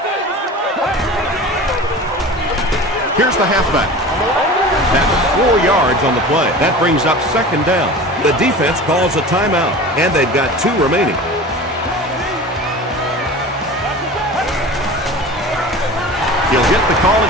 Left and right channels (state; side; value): normal; both; correlation 0.36